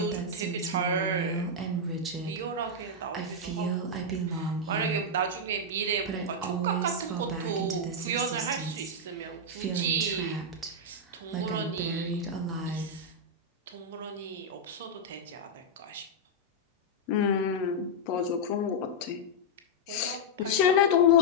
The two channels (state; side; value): normal; both; correlation -0.04